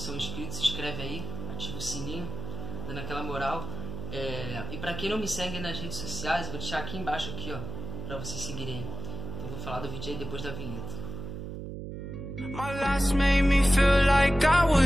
inscritos, se inscreve aí, ativa o sininho, dando aquela moral. E pra quem não me segue nas redes sociais, eu vou deixar aqui embaixo aqui, ó, pra vocês seguirem. Então eu vou falar do vídeo aí depois da vinheta. My last made me feel like I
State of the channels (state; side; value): noise; right; hum, 8 dB below the sound